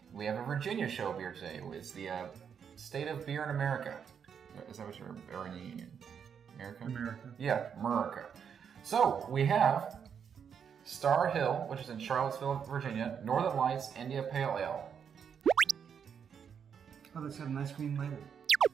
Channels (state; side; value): quieter; left; 7.4 dB